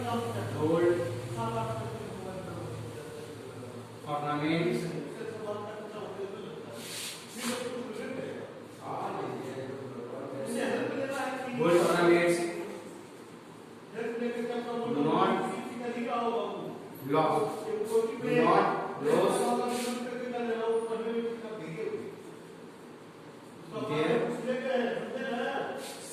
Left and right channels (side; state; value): both; identical; correlation 1.00